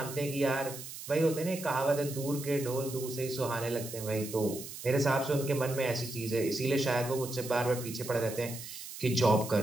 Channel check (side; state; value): right; noise; hiss, 11 dB below the sound